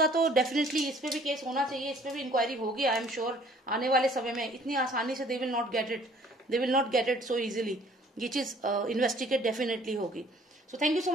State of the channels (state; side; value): normal; both; correlation 0.56